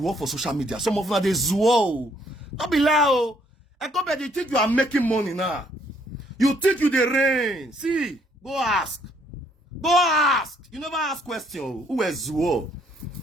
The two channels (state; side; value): normal; both; correlation 0.67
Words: for social media. Some of them are the zoo. Don't be loud. Eko better, you think you are making money now? You think you the rain? See, go ask. Go ask. You never ask question. Who is zoo?